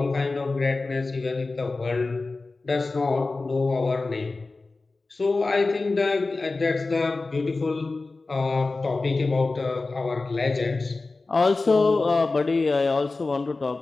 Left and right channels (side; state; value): right; quieter; 3.6 dB